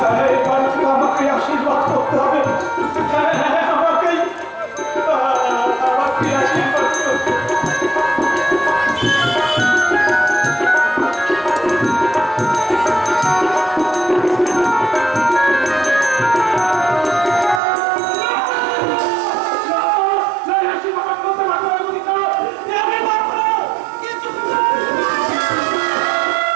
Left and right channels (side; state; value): left; drops out; at 17.6 s